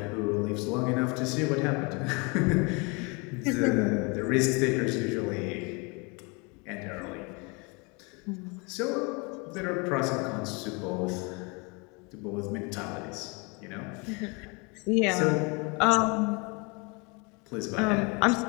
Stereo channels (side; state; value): right; quieter; 30.1 dB